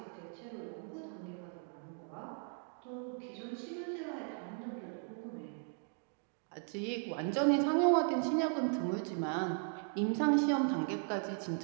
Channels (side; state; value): left; silent; 53 dB below the other